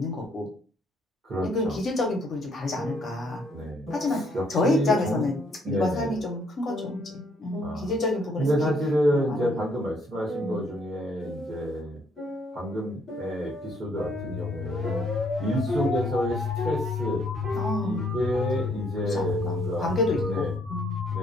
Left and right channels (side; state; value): both; normal; correlation 0.67